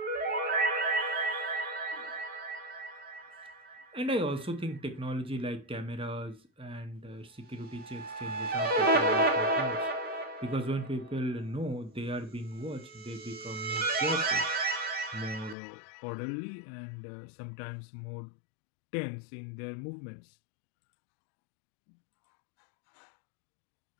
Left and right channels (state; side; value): drops out; right; at 15.6 s